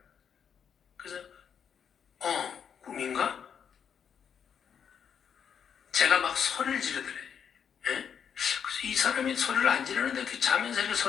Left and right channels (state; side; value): quieter; right; 7.6 dB